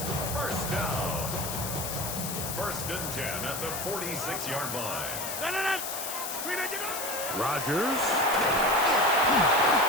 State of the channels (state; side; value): noise; left; hiss, 5 dB below the sound